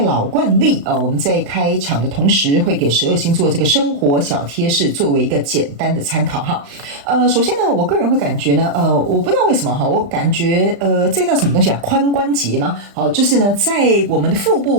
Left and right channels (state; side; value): late; left; 35 ms